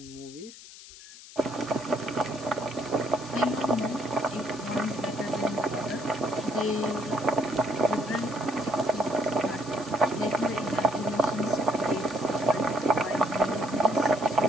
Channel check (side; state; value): left; noise; hiss, 17 dB below the sound